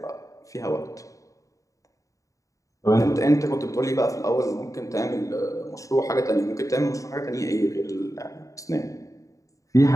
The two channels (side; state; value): right; late; 0.16 ms